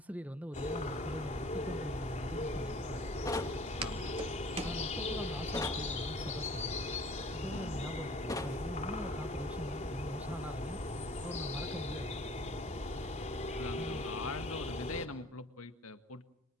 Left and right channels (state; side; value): normal; both; correlation 0.50